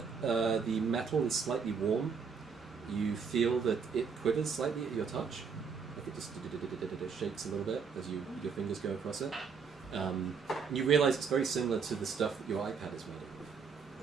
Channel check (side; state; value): left; quieter; 5.8 dB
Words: the metal is slightly warm. You feel that it quivers slightly at your touch. Like it just shakes a little bit as your fingers go across it. And you realise it's very similar to the stuff that your iPad is made